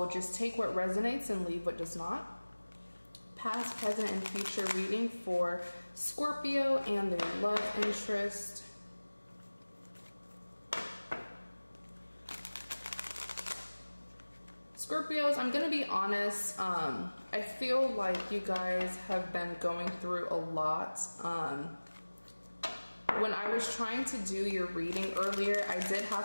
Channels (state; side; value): inverted; both; correlation -1.00